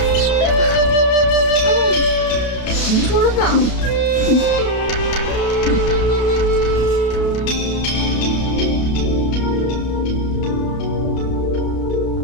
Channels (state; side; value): late; right; 32 ms